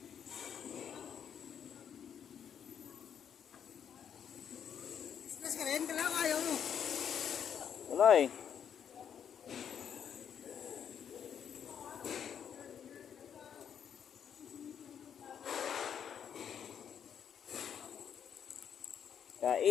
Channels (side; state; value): right; quieter; 8.3 dB